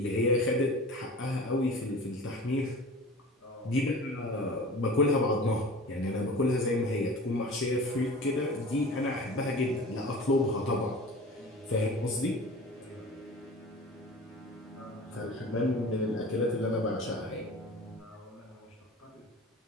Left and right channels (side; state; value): both; normal; correlation 0.38